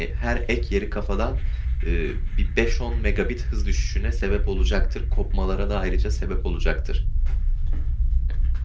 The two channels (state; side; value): identical; both; correlation 1.00